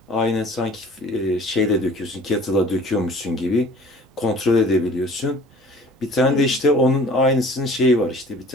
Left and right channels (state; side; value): normal; both; correlation 0.47